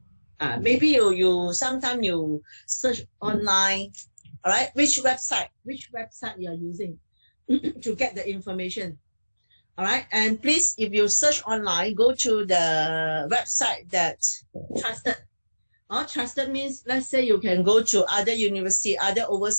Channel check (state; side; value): inverted; both; correlation -1.00